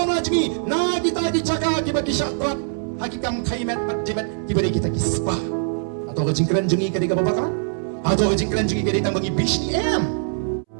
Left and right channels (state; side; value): silent; left; 64 dB below the other